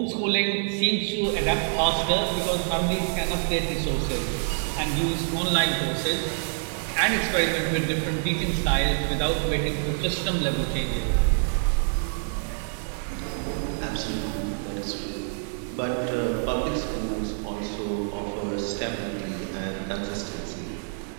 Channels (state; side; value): silent; left; digital silence